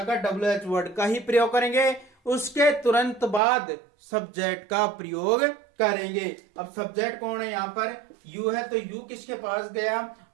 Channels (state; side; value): drops out; left; at 3.4 s